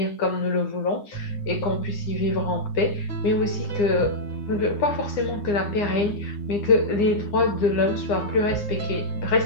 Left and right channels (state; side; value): late; right; 9.8 ms